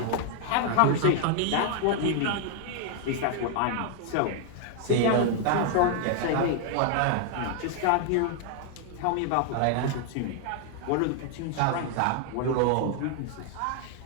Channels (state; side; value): different; both; correlation 0.00